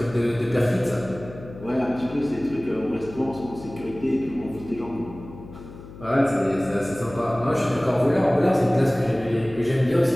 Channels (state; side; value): noise; left; hum, 16 dB below the sound